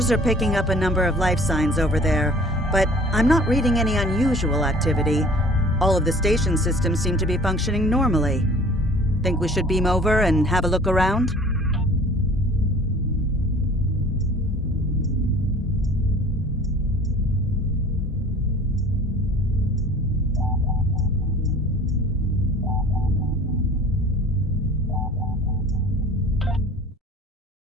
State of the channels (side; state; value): both; normal; correlation 0.48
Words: are picking up a number of life signs over there, but I'm not reading any unusual activity. All of the station systems seem to be functioning normally. Think we should beam over and have a look around?